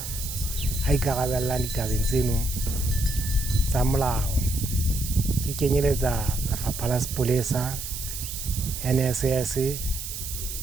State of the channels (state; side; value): noise; right; hiss, 7 dB below the sound